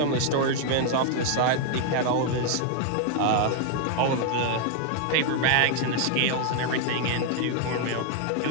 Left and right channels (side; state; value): both; different; correlation 0.00